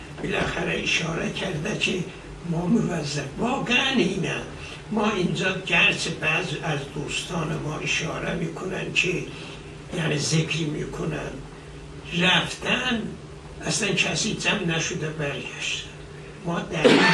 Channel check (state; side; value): identical; both; correlation 1.00